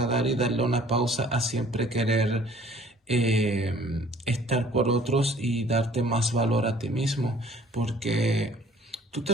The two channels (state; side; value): normal; both; correlation 0.54